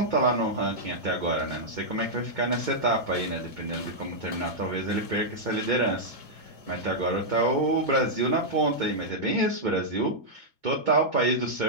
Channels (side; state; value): left; late; 2.2 ms